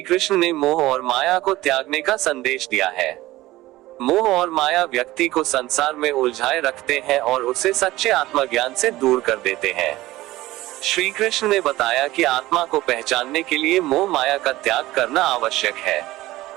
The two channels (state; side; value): quieter; left; 17.3 dB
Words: कृष्ण ने मोह और माया को त्यागने का संदेश दिया है। मोह और माया व्यक्ति को संसार में उलझाए रखते हैं और उसे सच्चे आत्मज्ञान से दूर कर देते हैं। श्री कृष्ण ने बताया कि आत्मा को पहचानने के लिए मोह माया का त्याग करना आवश्यक है।